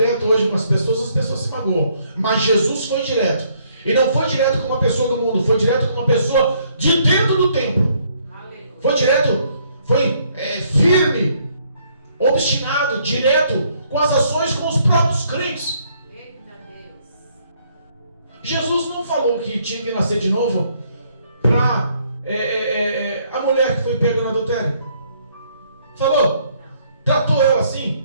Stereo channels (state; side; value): inverted; both; correlation -0.68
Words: hoje com as pessoas se magoam. Mas Jesus foi direto. E não foi direto com uma pessoa do mundo, foi direto com uma pessoa de dentro do templo. Foi direto, foi firme, obstinado, direto com as ações com os próprios crentes. Jesus não falou que tinha que nascer de novo para a mulher que foi pega no adultério. Falou? Tratou ela